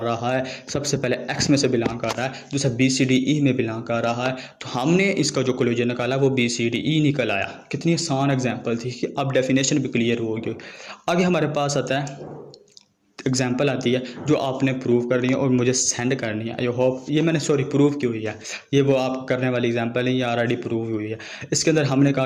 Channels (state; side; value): identical; both; correlation 1.00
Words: रहा है। सबसे पहले एक्स में से बिलोंग कर रहा है, दूसरा बी सी डी ई में बिलोंग कर रहा है, तो हमने इसका जो कोलेजर निकाला वो बी सी डी ई निकल आया। कितनी आसान एग्जाम्पल थी कि अब डेफिनेशन भी क्लियर हो गई। आगे हमारे पास आता है एग्जाम्पल आती है जो आपने प्रूव करनी है और मुझे सेंड करनी है। आई होप ये मैंने प्रूव की हुई है, ये वो आप करने वाली एग्जाम्पल है, ये ऑलरेडी प्रूव हुई है। इसके अंदर हमने कहा